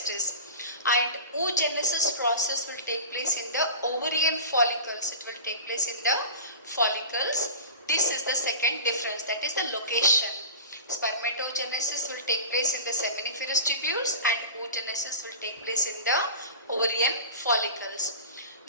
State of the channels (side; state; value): both; inverted; correlation -0.34